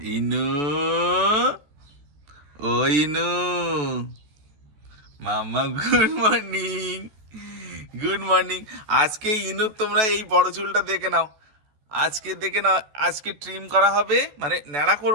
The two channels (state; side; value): late; left; 14 ms